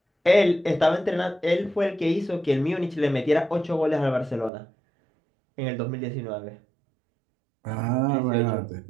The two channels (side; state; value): left; drops out; at 4.5 s